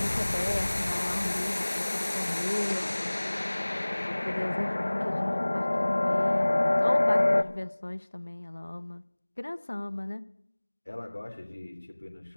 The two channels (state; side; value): inverted; both; correlation -1.00